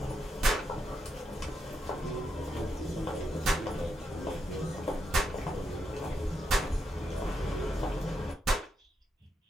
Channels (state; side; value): normal; both; correlation 0.82